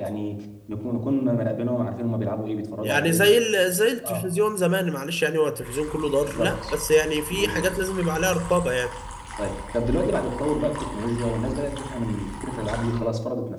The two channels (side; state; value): both; identical; correlation 1.00